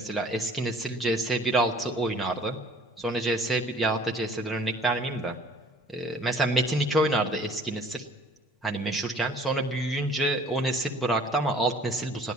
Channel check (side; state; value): both; normal; correlation 0.53